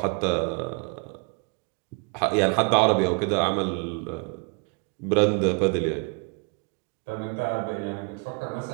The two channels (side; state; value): left; quieter; 34.6 dB